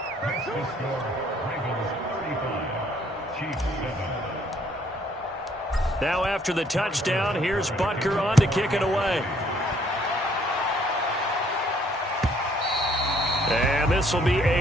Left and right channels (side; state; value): both; normal; correlation 0.64